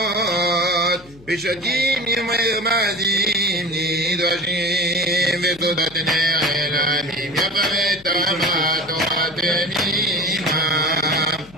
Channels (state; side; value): noise; left; hum, 24 dB below the sound